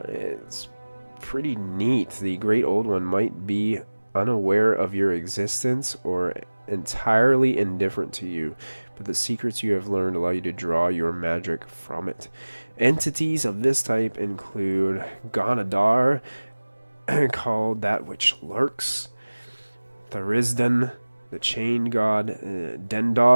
pretty neat. The Great Old One might be unaware of your existence or entirely indifferent to you, but the secrets you have learned allow you to draw your magic from it. Entities of this type include Ganadar, called That Which Lurks, Thurisdan, the Chain God,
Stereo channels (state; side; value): inverted; both; correlation -1.00